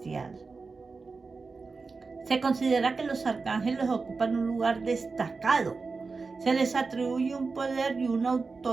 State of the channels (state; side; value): quieter; left; 4.3 dB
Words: se considera que los arcángeles ocupan un lugar destacado. Se les atribuye un poder y una